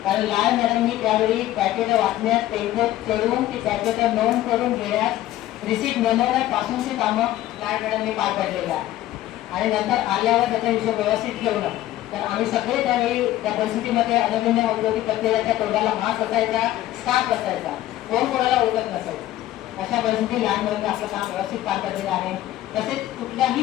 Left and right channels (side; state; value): right; quieter; 14.4 dB